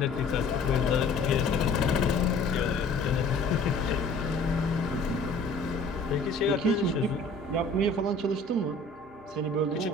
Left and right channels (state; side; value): quieter; right; 3.2 dB